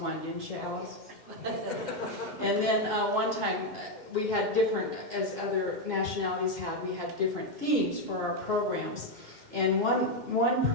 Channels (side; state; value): left; late; 2.1 ms